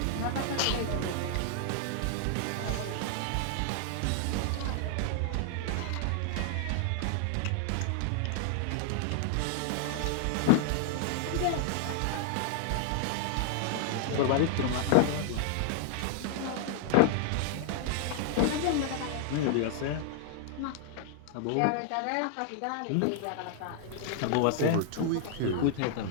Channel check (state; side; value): different; both; correlation 0.00